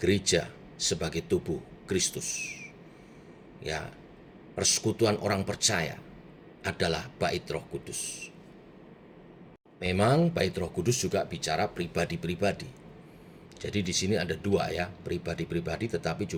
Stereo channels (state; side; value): identical; both; correlation 1.00